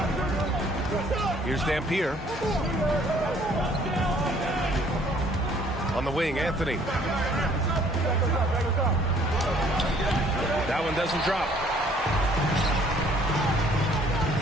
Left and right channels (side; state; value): both; normal; correlation 0.59